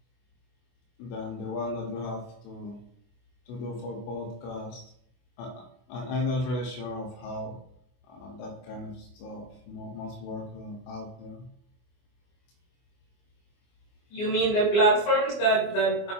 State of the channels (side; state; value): right; late; 24 ms